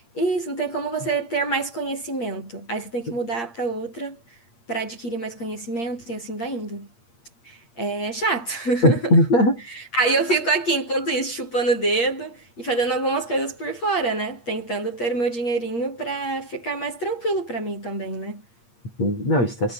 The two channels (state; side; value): late; right; 8.6 ms